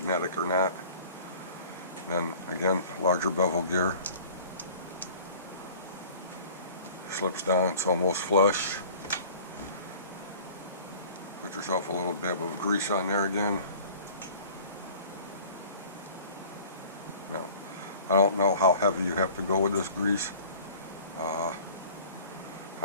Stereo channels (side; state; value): both; inverted; correlation -0.46